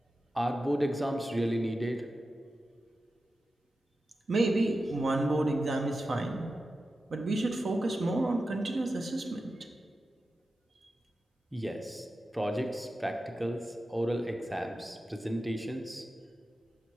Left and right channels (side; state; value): both; normal; correlation 0.92